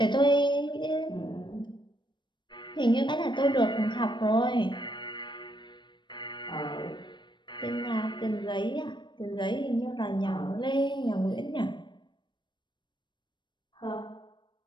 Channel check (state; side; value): late; right; 0.22 ms